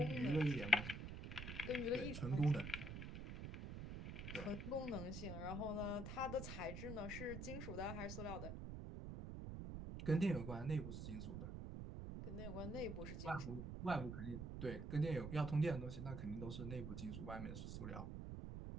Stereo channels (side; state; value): right; noise; rumble, 6 dB below the sound